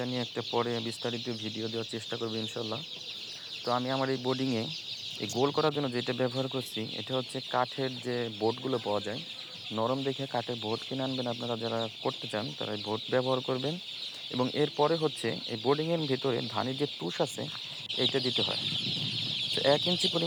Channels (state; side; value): identical; both; correlation 1.00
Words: নিয়ে একটা পরে বিস্তারিত ভিডিও দেওয়ার চেষ্টা করব ইনশাল্লাহ। তো আমি আমার এই বোর্ডিংয়ে এই গোল করার জন্য যেটা ব্যবহার করছি, এটা হচ্ছে কাঠের যে বোর্ডগুলো পাওয়া যায়। নরম দেখে কাঠের বোর্ড কিনে আনবেন, আপনারা যারা করতে চান তারা এই বোর্ড ব্যবহার করবেন। এবং এরপরে হচ্ছে এই বোর্ডিংয়ের ভিতরে ধানের যে তুষ আছে এইটা দিতে হয়। তো 1 ইঞ্চি